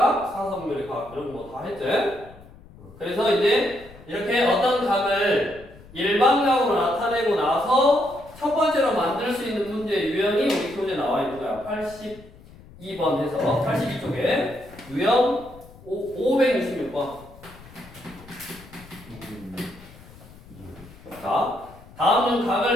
4, 4분면의 각 이런 거 다 했지. 그래서 이제 이렇게 어떤 각을 일반각으로 나타내고 나서 첫 번째로 만들 수 있는 문제 유형이 우리 교재에 나와 있는 거야. 82번 해서 82쪽에 유형 566번. 자, 다음은 각을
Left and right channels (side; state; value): left; noise; rumble, 21 dB below the sound